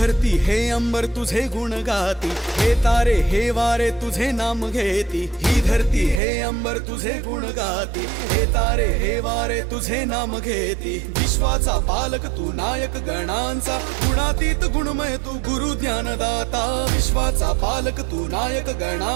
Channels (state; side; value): drops out; left; at 6.2 s